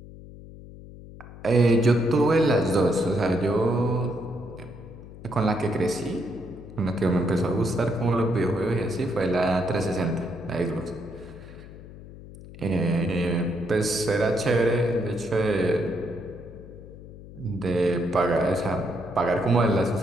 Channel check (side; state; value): left; noise; hum, 16 dB below the sound